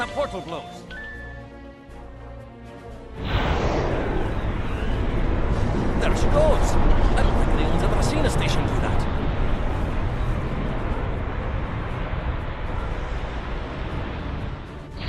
portal blows. There she goes. I don't think anyone's ever seen a station do that.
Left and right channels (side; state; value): both; identical; correlation 1.00